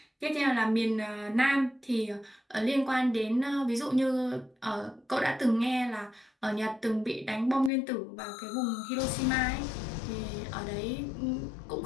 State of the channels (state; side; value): drops out; right; at 7.7 s